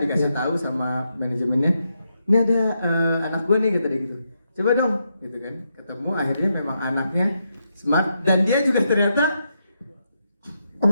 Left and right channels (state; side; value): inverted; both; correlation -0.82